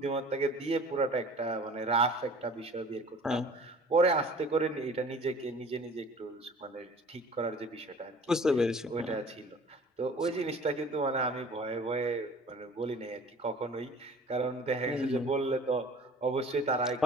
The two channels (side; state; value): both; normal; correlation 0.47